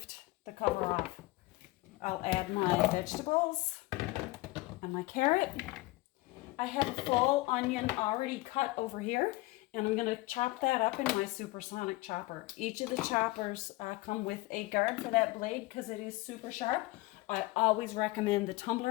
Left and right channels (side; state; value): right; quieter; 20.5 dB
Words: the cover off. I'll add my vegetables and my carrot. I have a full onion already cut over here, and I'm going to chop that up in my supersonic chopper. Each of the choppers come with a guard for that blade because it is super sharp. I always recommend the